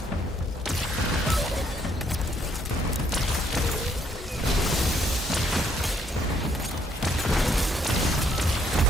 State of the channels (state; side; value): normal; both; correlation 0.69